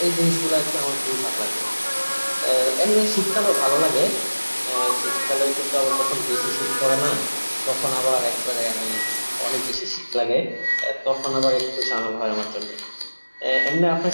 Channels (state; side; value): inverted; both; correlation -1.00